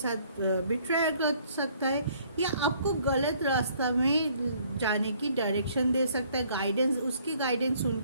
बिट्रेयर कर सकता है, या आपको गलत रास्ता में जाने की डायरेक्शन दे सकता है, उसकी गाइडेंस सुन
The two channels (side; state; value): both; inverted; correlation -0.62